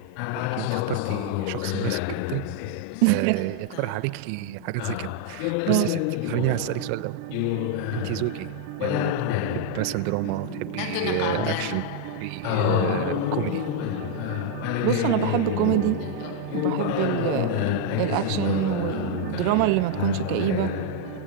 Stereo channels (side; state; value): both; different; correlation 0.00